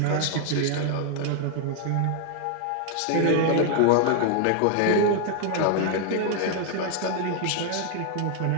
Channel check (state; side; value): different; both; correlation 0.00